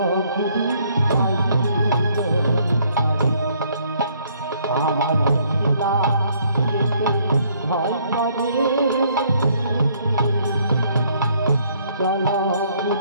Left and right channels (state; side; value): inverted; both; correlation -0.65